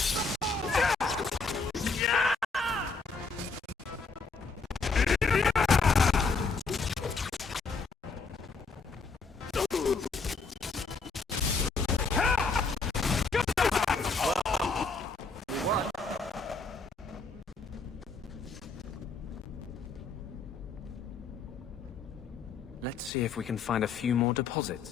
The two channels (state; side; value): quieter; right; 4.4 dB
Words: Let's see if we can find a few more